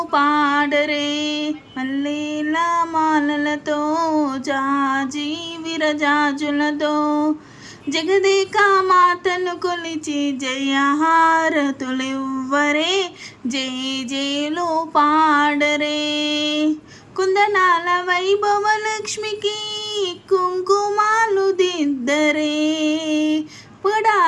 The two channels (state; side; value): identical; both; correlation 1.00